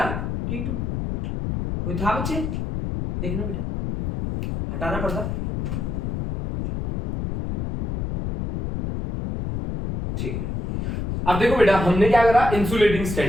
T2। कोई था बच्चे? देखना बेटा, हटाना पड़ता। ठीक है, अब देखो बेटा हमने क्या करा? इंसुलेटिंग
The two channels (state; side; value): noise; left; rumble, 4 dB below the sound